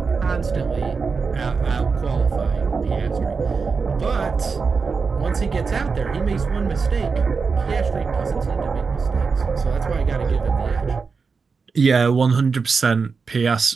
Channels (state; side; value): quieter; left; 5.0 dB